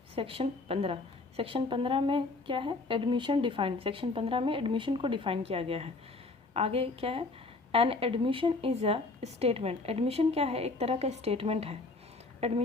section 15। Section 15 में क्या है, एडमिशन डिफाइंड। सेक्शन 15 में एडमिशन को डिफाइन किया गया है। आगे क्या है, an admission is a statement. Admission क्या है, एक तरह का स्टेटमेंट है।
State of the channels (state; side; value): quieter; right; 3.4 dB